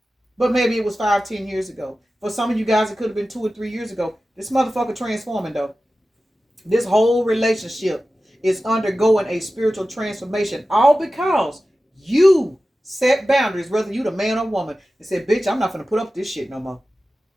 but maybe it was 5, 10 years ago. For some of you guys, it could have been 2 or 3 years ago. This motherfucker transforming though. This whole relationship is undergoing a spiritual transformation, all because you Set boundaries, whether you the man or woman, and say, bitch, I'm not gonna put up with this shit no more.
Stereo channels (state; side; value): normal; both; correlation 0.94